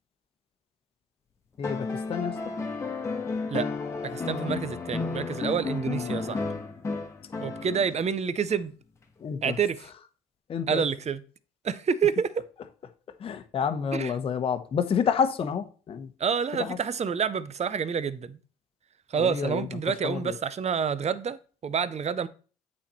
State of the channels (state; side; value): normal; both; correlation 0.44